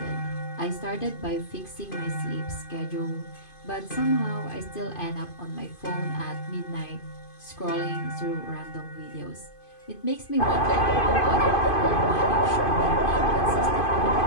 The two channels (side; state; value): right; late; 2.5 ms